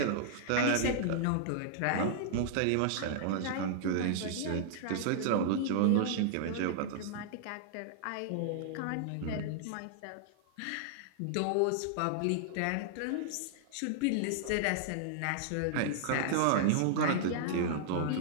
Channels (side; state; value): both; different; correlation -0.01